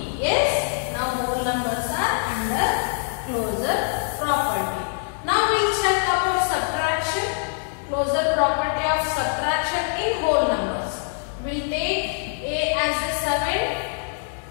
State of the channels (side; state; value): right; silent; 63 dB below the other